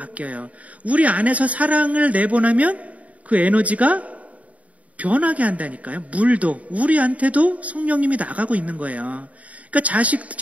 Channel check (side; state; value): left; late; 0.068 ms